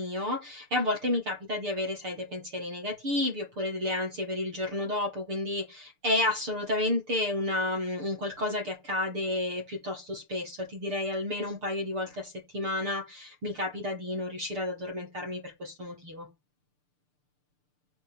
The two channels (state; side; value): late; left; 6.7 ms